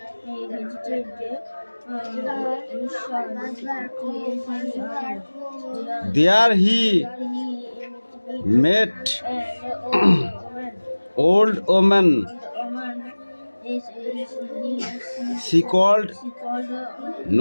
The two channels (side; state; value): both; inverted; correlation -1.00